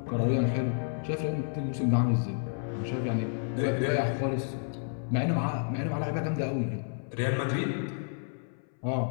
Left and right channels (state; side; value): silent; right; 58 dB below the other